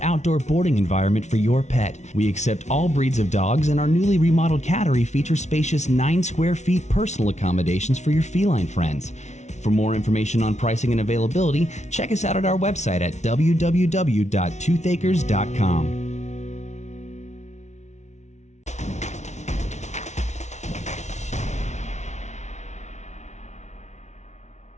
boarding environment for your pet. We accept all breeds of dogs, and our newly remodeled cattery features spacious 9 square feet personal accommodations for your feline friends. For more information on pricing and availability, check us out at our website at www.toothacres.com.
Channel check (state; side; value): late; right; 0.33 ms